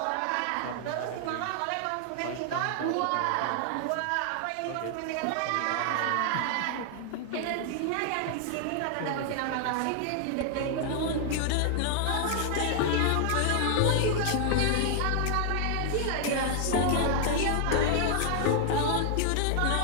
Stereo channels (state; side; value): different; both; correlation 0.00